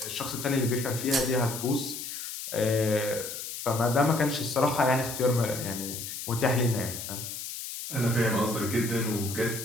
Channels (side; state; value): left; noise; hiss, 7 dB below the sound